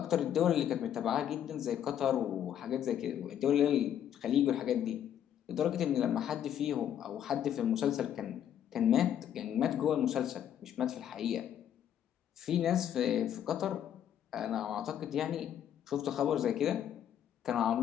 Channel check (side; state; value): right; quieter; 10.0 dB